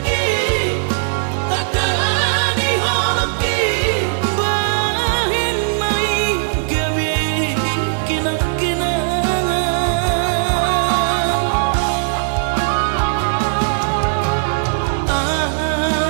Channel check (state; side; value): silent; left; digital silence